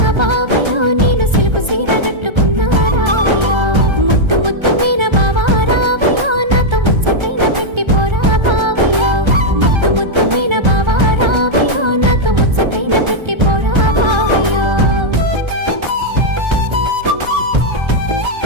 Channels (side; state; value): left; late; 1.3 ms